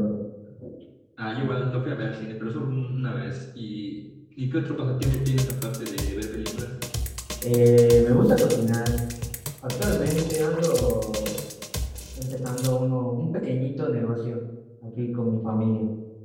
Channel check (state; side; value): identical; both; correlation 1.00